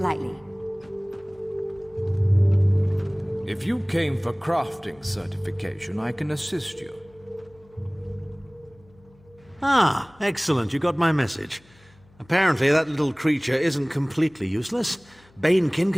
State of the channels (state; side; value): noise; left; hum, 29 dB below the sound